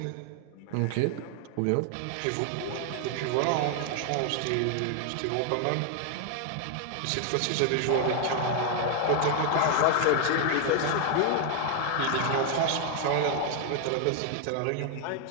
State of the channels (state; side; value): different; both; correlation 0.00